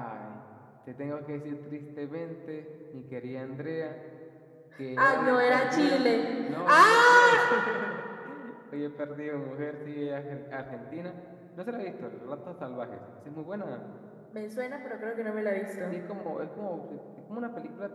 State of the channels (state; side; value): identical; both; correlation 1.00